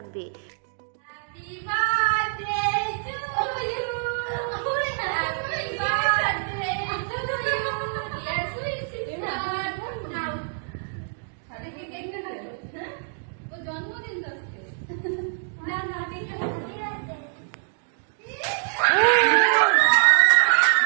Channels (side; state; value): left; silent; digital silence